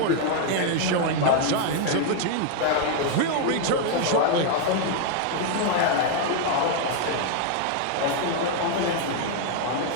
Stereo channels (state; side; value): different; both; correlation 0.00